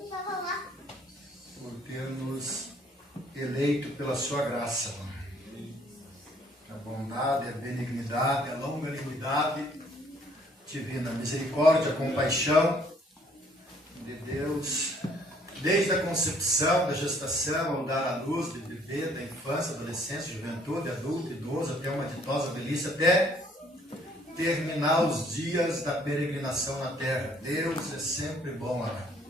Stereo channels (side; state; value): both; normal; correlation 0.61